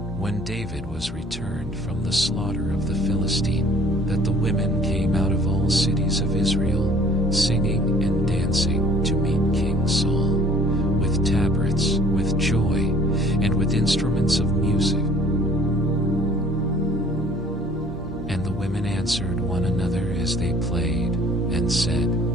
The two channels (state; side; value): normal; both; correlation 0.54